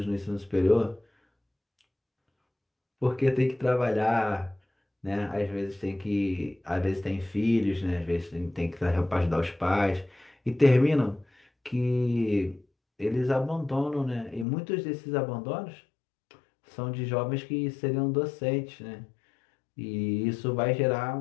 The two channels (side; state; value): right; drops out; at 14.5 s